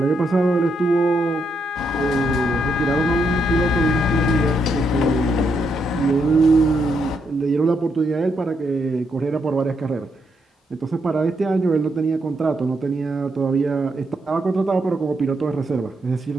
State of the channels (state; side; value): normal; both; correlation 0.79